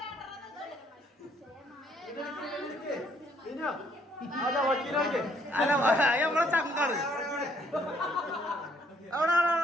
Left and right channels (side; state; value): both; normal; correlation 0.67